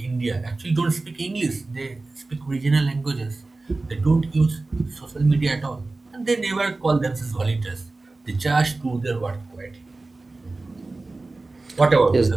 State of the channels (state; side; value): quieter; left; 3.3 dB